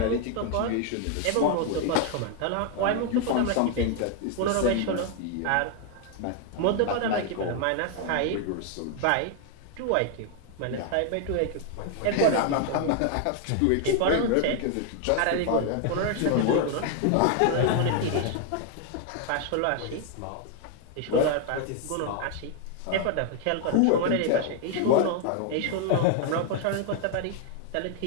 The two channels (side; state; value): both; different; correlation 0.00